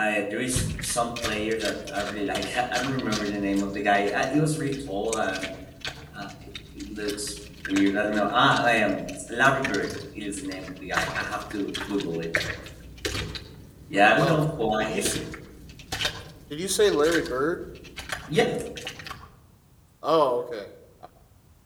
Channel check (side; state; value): both; identical; correlation 1.00